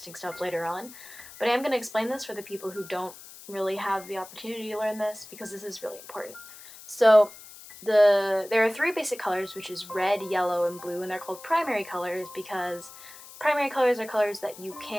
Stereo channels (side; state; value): left; noise; hiss, 17 dB below the sound